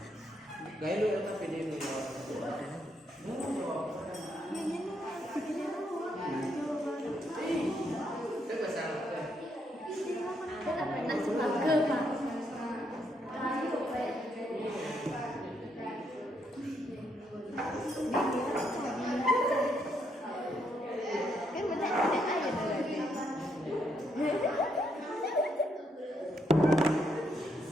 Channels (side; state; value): both; normal; correlation 0.76